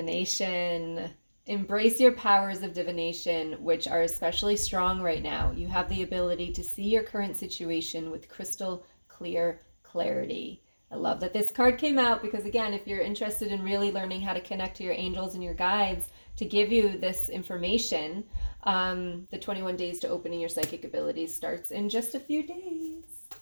Embrace your powers of divination, which are especially strong right now. You have the ability to see your current situation with crystal clear clarity. I love that this card came out because, again, if you're interested in really learning how to connect to your angels and your guides to give you this information, the 21 days to opening your psychic abilities starts in just a few days.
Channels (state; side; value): inverted; both; correlation -1.00